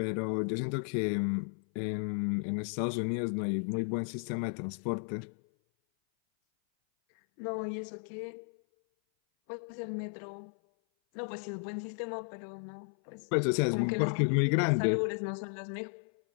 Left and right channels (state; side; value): silent; right; 55 dB below the other